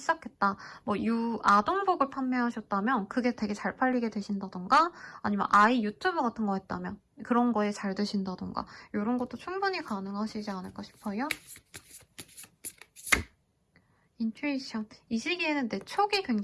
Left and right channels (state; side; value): identical; both; correlation 1.00